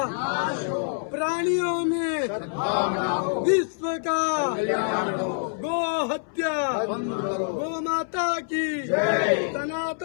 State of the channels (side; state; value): right; silent; 61 dB below the other